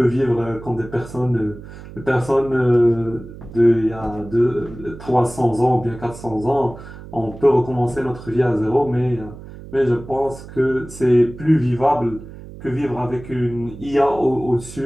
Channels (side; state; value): right; noise; hum, 15 dB below the sound